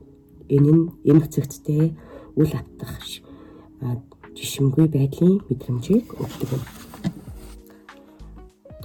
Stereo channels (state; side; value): identical; both; correlation 1.00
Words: Энэ нь эмх цэгцтэй үл автах жишимгүй байдлын мэдрэмжийг өгдөг юм.